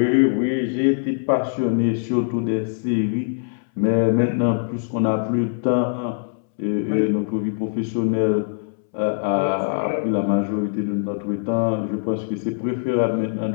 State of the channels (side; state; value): right; silent; 64 dB below the other